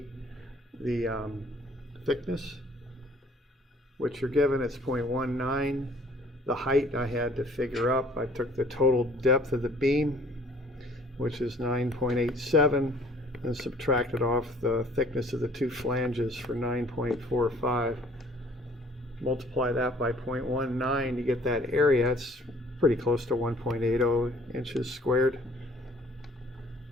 the thickness, which you're given. It's 0.19. The height I had to figure up. I took the total depth of the beam, which is 9.87, and subtracted off the thickness of the two flanges for 9.45. Multiply that by 0.19 to get that area. It's pretty close to 1.80 inches squared.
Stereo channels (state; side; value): normal; both; correlation 0.55